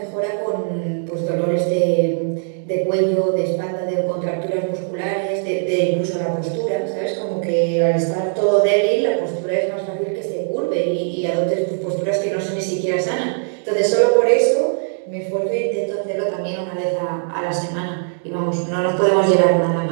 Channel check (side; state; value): left; silent; digital silence